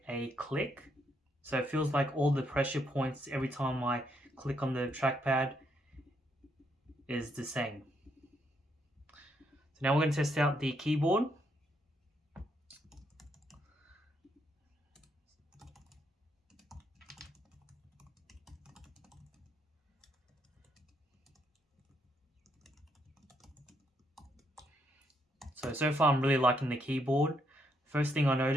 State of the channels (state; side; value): normal; both; correlation 0.75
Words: a click. So it feels like all the pressure points every time I click on the trackpad is the same. So now we're going to test out the keyboard. So far I'm really liking the keyboard. First thing I